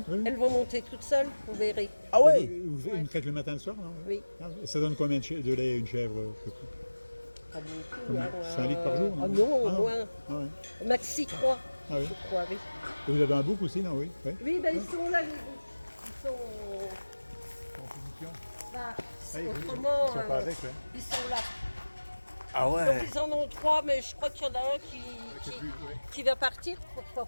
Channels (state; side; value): inverted; both; correlation -1.00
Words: oui. Elles vont monter toutes seules, vous verrez. Ah ouais? Vous une traite le matin et le soir, non? Oui. Ah, et ça donne combien de lait une chèvre? Pas beaucoup. Combien? Hein, 5 litres par jour, non? Ah non, au Ah non. moins. Ah ouais. Maxi 3, Ah oui. je crois, oui. Et vous avez un bouc aussi, non? Oui. Oui. Oui, ben ils sont là, les boucs. Ils sont. En position. Bah, Ah, autrement, ils sont pas avec, ouais. ils sont là. Ah Donc ouais. ils en ont 3, mais je crois qu'il y en a un C'est plus, ouais. qui va partir pour pouvoir